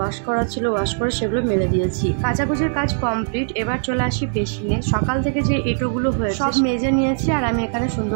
করা ছিল ওয়াশ করে সেগুলো মেলে দিয়েছি। কাচাকুচির কাজ কমপ্লিট। এবার চলে আসি বেসিনে। সকাল থেকে যে এঁটোগুলো হয়েছে সব মেজে নিয়েছি আর আমি এখানে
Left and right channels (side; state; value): left; silent; digital silence